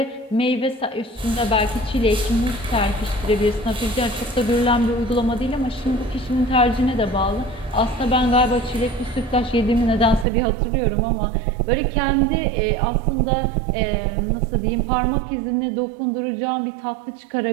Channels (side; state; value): left; drops out; at 10.2 s